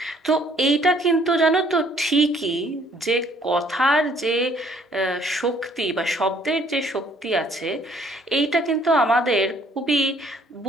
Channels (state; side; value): normal; both; correlation 0.61